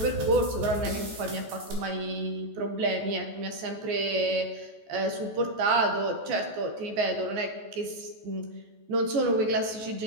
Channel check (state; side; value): late; left; 14 ms